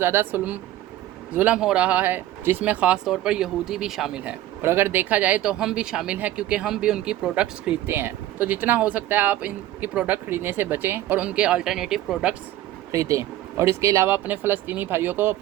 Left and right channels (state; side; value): quieter; left; 14.1 dB